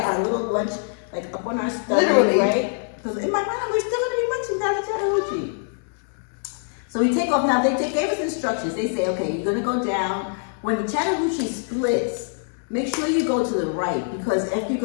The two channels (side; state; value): right; silent; 63 dB below the other